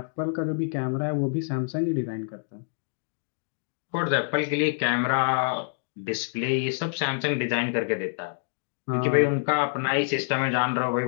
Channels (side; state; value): right; silent; digital silence